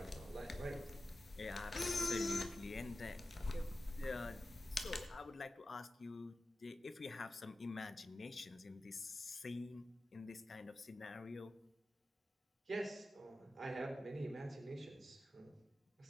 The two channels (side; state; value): both; normal; correlation 0.94